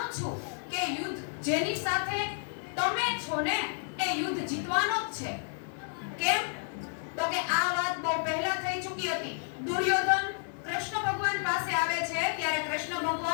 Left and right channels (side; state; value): right; silent; 57 dB below the other